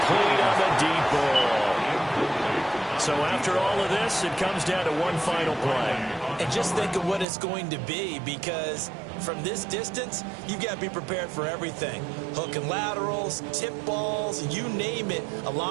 on the deep ball. So after all of this, it comes down to one final play. And just think of what it's going to be, because from this distance, you've got to be prepared for everything. Hook and laterals, tip balls, you name it. A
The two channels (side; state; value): left; drops out; at 7.2 s